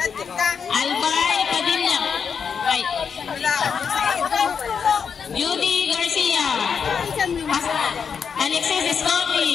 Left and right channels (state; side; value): quieter; right; 6.5 dB